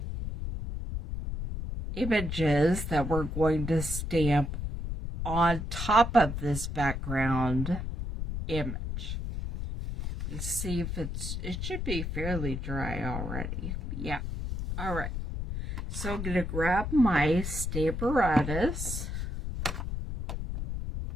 images that we're going to stamp on top of this background image. Let's see if it should be fairly dry already. Yeah. All right. So I'm going to grab my Stamparatus.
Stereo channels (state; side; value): noise; left; rumble, 4 dB below the sound